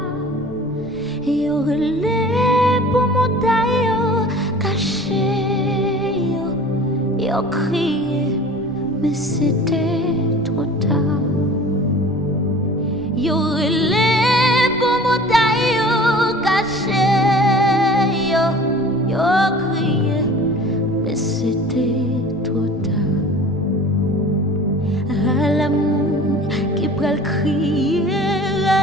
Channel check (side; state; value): left; noise; rumble, 21 dB below the sound